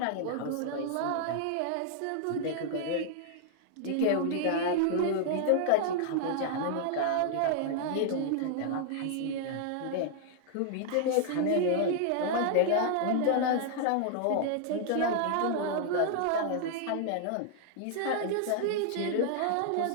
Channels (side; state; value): both; different; correlation -0.01